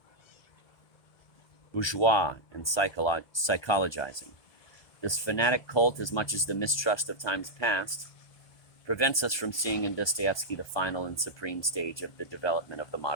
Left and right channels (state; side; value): late; right; 1.2 ms